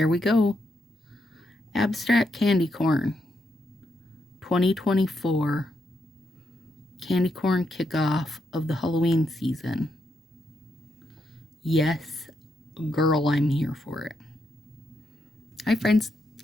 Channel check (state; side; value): normal; both; correlation 0.80